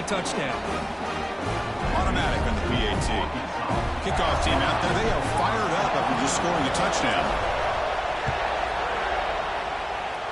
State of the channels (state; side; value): identical; both; correlation 1.00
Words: touchdown. Automatic on the PAT. Kickoff team out there, they are fired up after just scoring a touchdown.